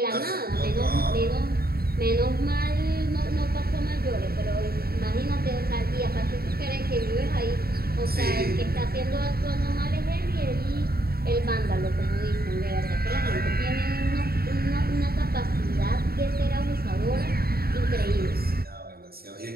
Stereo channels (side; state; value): left; late; 0.45 ms